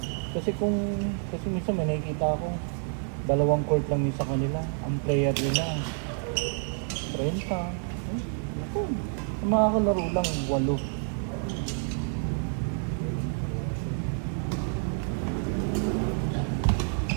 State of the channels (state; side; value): silent; left; 58 dB below the other